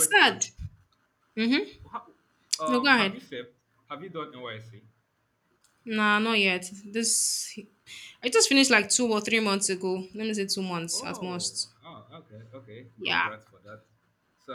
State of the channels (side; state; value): both; identical; correlation 1.00